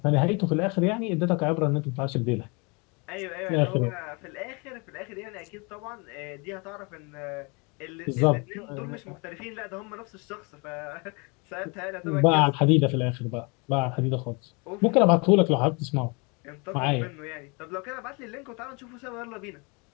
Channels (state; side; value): quieter; right; 30.3 dB